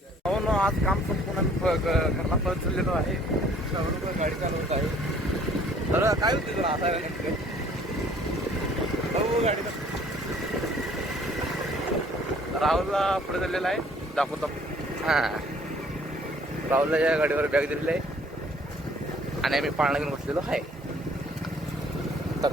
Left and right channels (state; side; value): normal; both; correlation 0.57